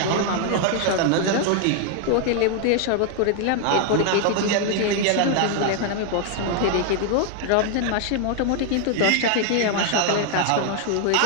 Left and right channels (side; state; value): both; different; correlation 0.00